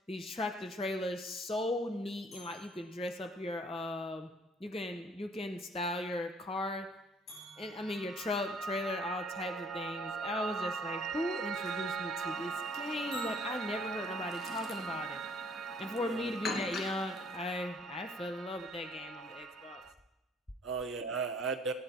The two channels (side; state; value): both; normal; correlation 0.59